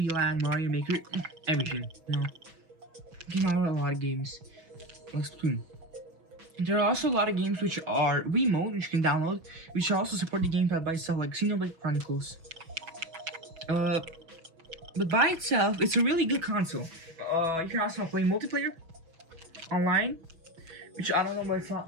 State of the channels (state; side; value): late; left; 6.0 ms